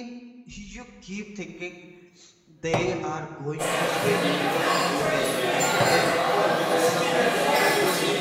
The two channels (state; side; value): identical; both; correlation 1.00